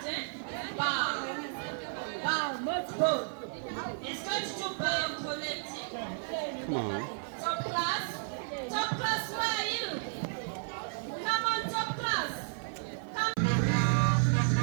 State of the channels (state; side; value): silent; left; 56 dB below the other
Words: eh? Bow. Bow, not go. It's going to do bow collecting. Come on. Top class? Top class, where are you? Come on, top class. Come.